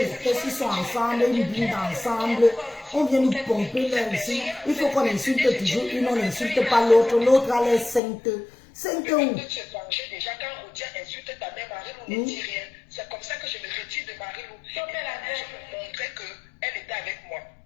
fesses, ils sont ensemble, ils blindent ensemble. On vient nous pomper là ici. Il faut qu'on insulte toujours une, on n'insulte pas l'autre. L'autre a l'air sainte. Sainte où? Déjà quand Rodia insulte ta mère, Marie-Lou ne dit rien. C'est comme ça que je me retire de Marie-Lou. Je me montrais qu'elle était avec moi.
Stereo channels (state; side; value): drops out; right; at 8.0 s